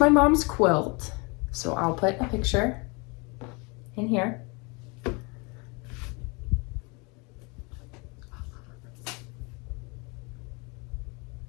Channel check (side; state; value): right; quieter; 29.6 dB